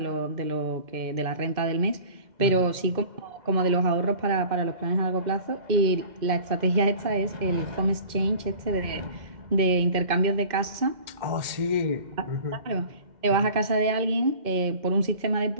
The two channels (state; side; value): late; left; 2.1 ms